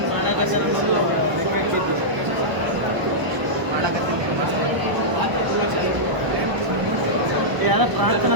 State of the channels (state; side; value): late; left; 1.0 ms